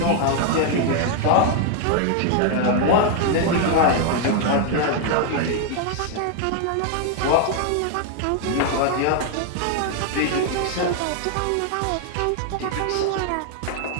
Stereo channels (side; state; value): both; different; correlation 0.00